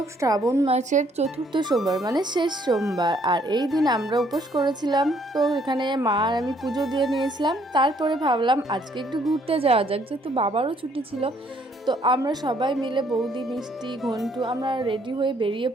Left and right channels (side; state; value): both; normal; correlation 0.66